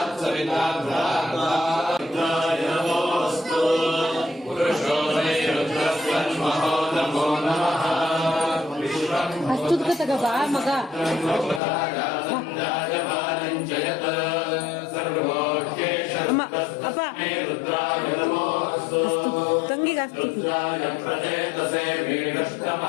सविता नमोऽस्तु पुरुषो मे रुद्रस्वन्महो नमो नमः ಅಷ್ಟುದ್ಗತಗ ಬಾ ಮಗ ಅಮ್ಮ ಅಪ್ಪ ತಂಗಿಗೆ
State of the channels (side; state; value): right; drops out; at 11.6 s